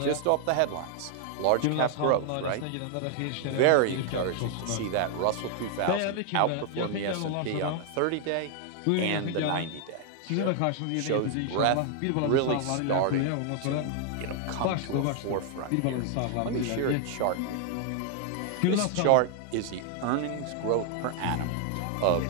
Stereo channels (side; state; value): both; different; correlation 0.00